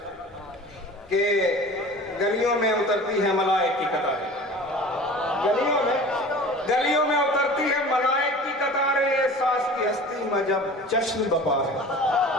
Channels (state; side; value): normal; both; correlation 0.40